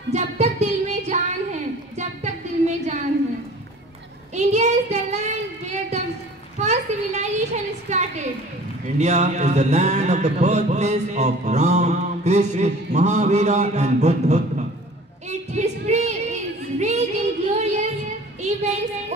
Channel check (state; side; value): normal; both; correlation 0.46